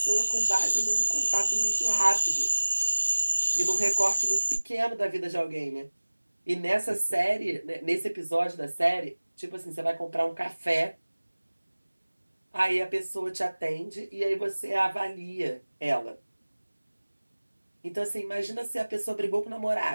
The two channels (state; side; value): inverted; both; correlation -1.00